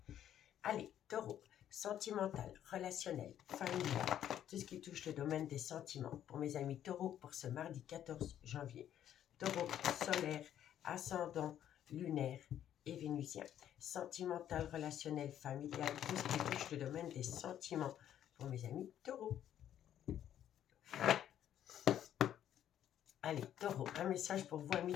Allez, taureau, sentimental, relationnel, familial, tout ce qui touche le domaine des sentiments. Pour mes amis taureaux, pour ce mardi 14 janvier. Taureau, solaire, ascendant, lunaire et vénusien. Sentimental, relationnel, familial, tout ce qui touche le domaine des sentiments. Pour mes amis taureaux. Allez, taureau, un message pour vous, amis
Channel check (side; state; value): right; quieter; 10.7 dB